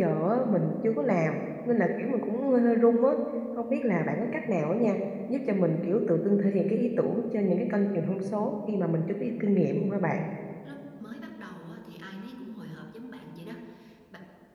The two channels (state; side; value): identical; both; correlation 1.00